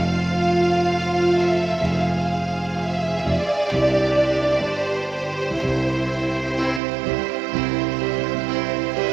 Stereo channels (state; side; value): drops out; left; at 6.8 s